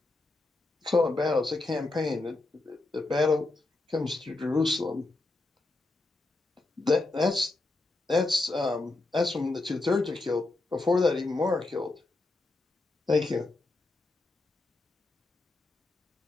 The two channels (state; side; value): quieter; right; 3.1 dB